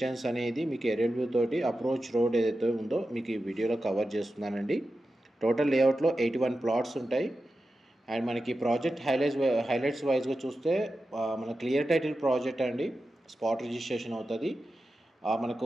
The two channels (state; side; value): normal; both; correlation 0.92